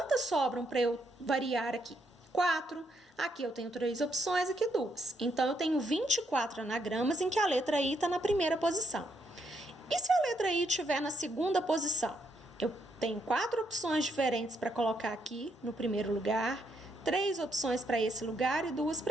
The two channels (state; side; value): normal; both; correlation 0.76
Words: sobram para eu variar aqui? 4. Aqui eu tenho 3 opções, aqui 2. Então, eu tenho 24 anagramas em que a letra I está na primeira posição. E se a letra I estiver na segunda posição? Eu tenho 4 opções diferentes para colocar aqui no primeiro lugar, 3 opções para esse lugar e 2